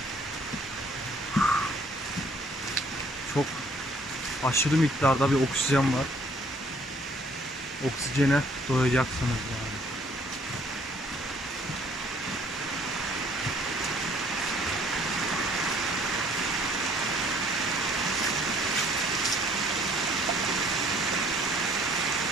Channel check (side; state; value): both; normal; correlation 0.60